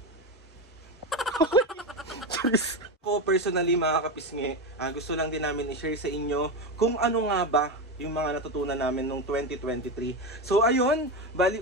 Ako personally mga kapisngi, gusto lang din namin i-share sa inyo kung ano nga ba yung mga natutunan namin noong 2023. So ayun,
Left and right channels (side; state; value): both; normal; correlation 0.16